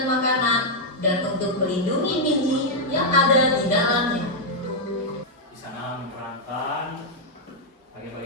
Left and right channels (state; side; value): normal; both; correlation -0.03